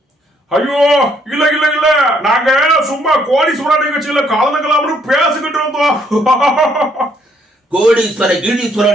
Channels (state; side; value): normal; both; correlation 0.69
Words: ஐயோ, இல்ல இல்ல இல்ல, நாங்க சும்மா கோடீஸ்வரன் நிகழ்ச்சியில கலந்துக்கலாம்னு பேசிக்கிட்டு இருந்தோம். கோடீஸ்வர